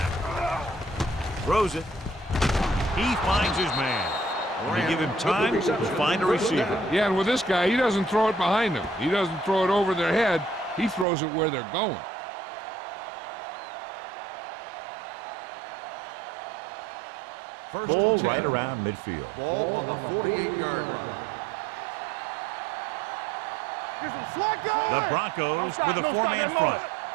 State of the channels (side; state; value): left; drops out; at 11.1 s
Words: Throws it. He finds his man. When you give him time, he'll find a receiver. Yeah, and with this guy, he doesn't throw it behind them. He doesn't throw it over their head. He throws it where they're going. Ball right around midfield. Ball on the 48-yard line. Great shoot. The Broncos with a four-man front.